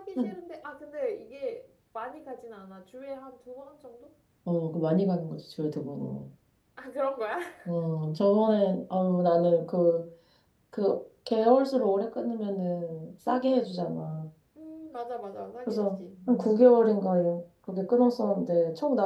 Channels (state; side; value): identical; both; correlation 1.00